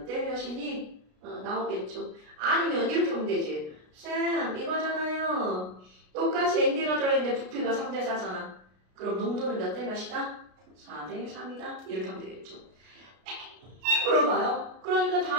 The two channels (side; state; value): left; late; 33 ms